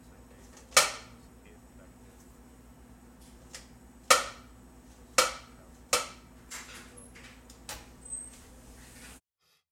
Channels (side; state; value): both; identical; correlation 1.00